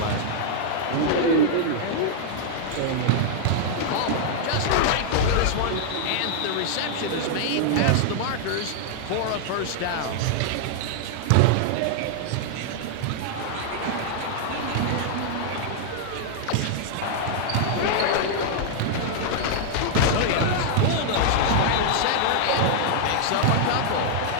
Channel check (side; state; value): both; different; correlation -0.01